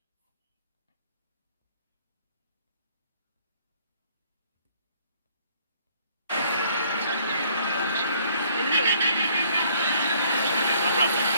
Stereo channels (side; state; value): both; inverted; correlation -0.62